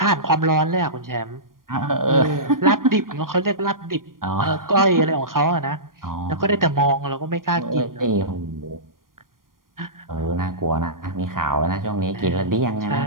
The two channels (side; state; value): left; late; 0.91 ms